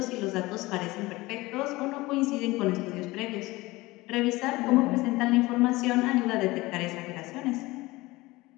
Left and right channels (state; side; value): quieter; right; 20.5 dB